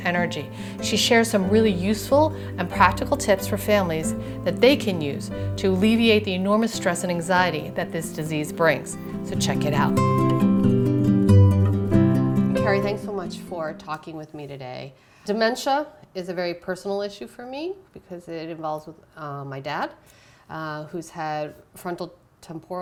She shares some really useful and practical tips for families that they can use to alleviate the enormous stress and anxiety that this disease brings. So check it out. Carrie, thanks so much for talking with me today. Dementia is a very personal issue for me because it involves with my dad, who's had frontal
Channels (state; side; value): identical; both; correlation 1.00